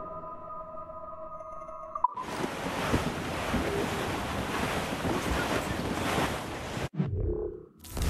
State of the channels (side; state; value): both; identical; correlation 1.00